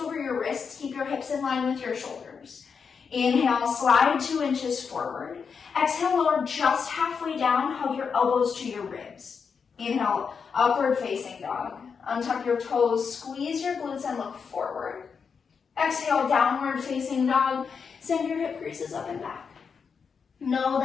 your wrists. Keep your hips in line with your shoulders. Inhale, slide 2 inches forward. Exhale, lower just halfway down. Hug your elbows to your ribs. Inhale, upward facing dog. Untuck your toes, squeeze your glutes and look forward. Exhale, downward facing dog. Send your hip creases up and back. Know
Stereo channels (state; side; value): quieter; right; 6.0 dB